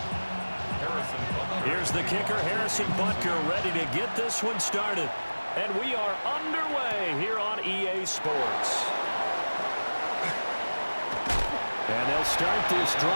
Here's the kicker, Harrison Butker, ready to get this one started. And we are underway here on EA Sports. And they'll start this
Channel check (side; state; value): both; inverted; correlation -1.00